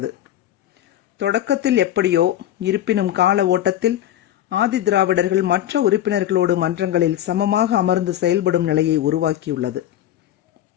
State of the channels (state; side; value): quieter; right; 12.0 dB